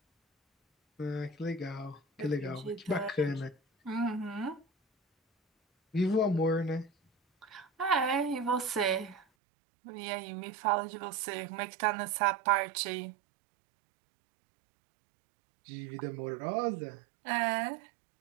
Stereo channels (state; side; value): drops out; left; at 9.2 s